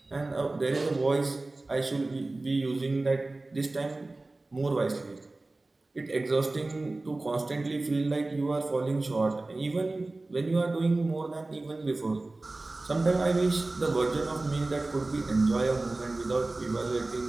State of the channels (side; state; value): left; quieter; 3.0 dB